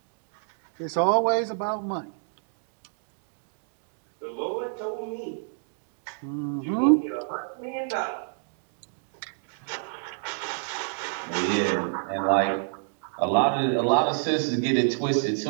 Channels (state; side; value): silent; left; digital silence